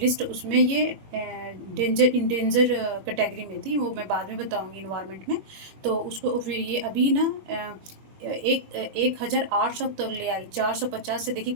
उसमें ये इंडेंजर कैटेगरी में थी, वो मैं बाद में बताऊंगी इन्वायरमेंट में। तो उसको फिर ये अभी ना 1800 तक ले आई, 450 से देखिए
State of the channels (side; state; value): left; late; 21 ms